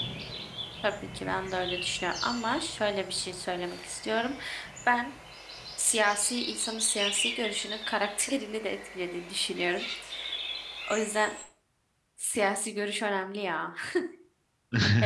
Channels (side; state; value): both; identical; correlation 1.00